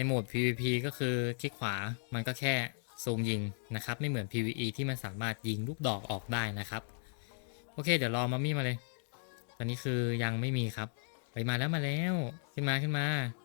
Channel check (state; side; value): silent; right; digital silence